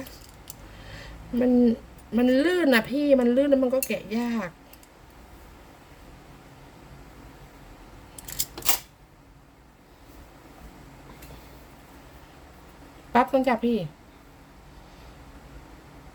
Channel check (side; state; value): both; identical; correlation 1.00